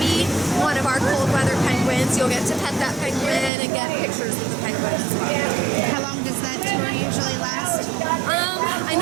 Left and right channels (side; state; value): left; drops out; at 3.5 s